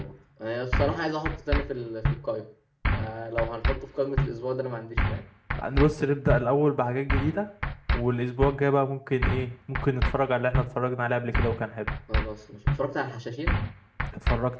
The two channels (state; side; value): identical; both; correlation 1.00